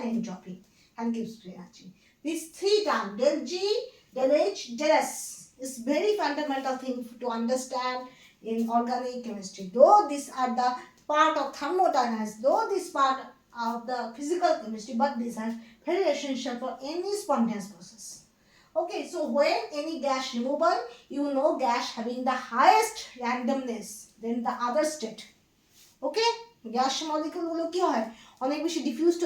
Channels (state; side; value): identical; both; correlation 1.00